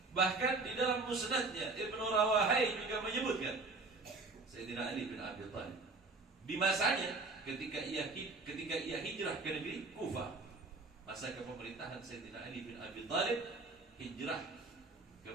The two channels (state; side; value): quieter; left; 3.7 dB